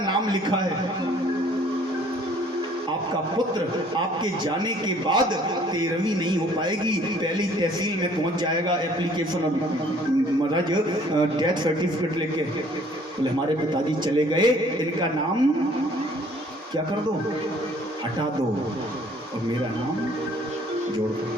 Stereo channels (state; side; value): normal; both; correlation 0.57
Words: नाम लिखा है, आपका पुत्र आपके जाने के बाद 13वीं नहीं हो पाएगी, पहली तहसील में पहुंच जाएगा एप्लीकेशन और महाराज डेथ सर्टिफिकेट लेके। बोले हमारे पिताजी चले गए, इनका नाम क्या कर दो, हटा दो और मेरा नाम जोड़ दो।